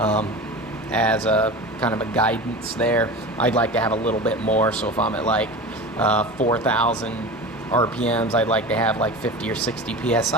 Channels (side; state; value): both; normal; correlation 0.31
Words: as a kind of a guidance there. I'd like to have a little bit more, so if I'm at like 4,000 RPMs, I'd like to have like 50 or 60